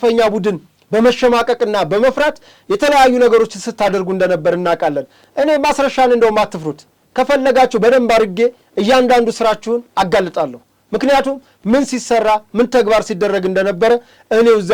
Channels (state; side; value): identical; both; correlation 1.00